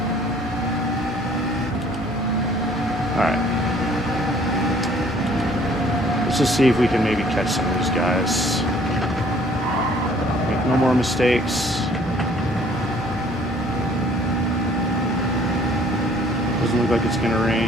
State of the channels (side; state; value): both; normal; correlation 0.58